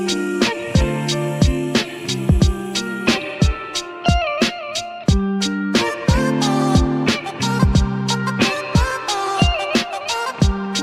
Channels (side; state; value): both; identical; correlation 1.00